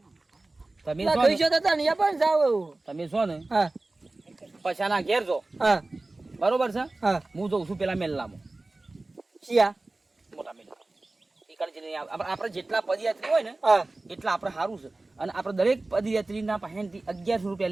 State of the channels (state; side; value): quieter; left; 3.0 dB